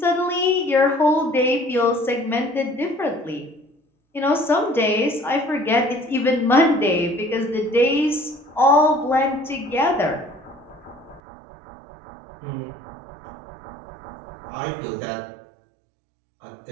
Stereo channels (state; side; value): drops out; left; at 11.2 s